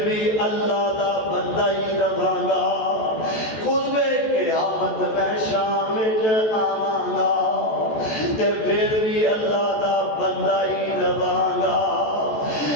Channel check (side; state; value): right; late; 14 ms